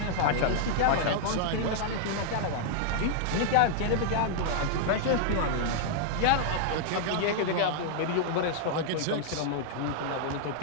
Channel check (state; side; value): different; both; correlation -0.01